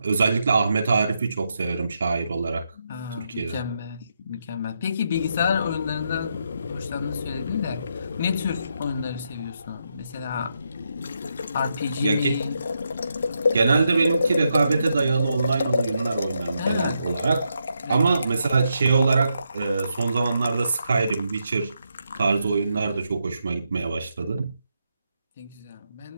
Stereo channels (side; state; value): both; inverted; correlation -0.82